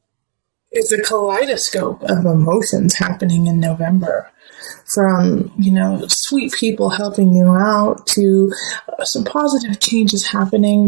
it's a kaleidoscope of emotions happening in November. From, sweet people helping you out to some positive changes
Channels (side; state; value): left; silent; digital silence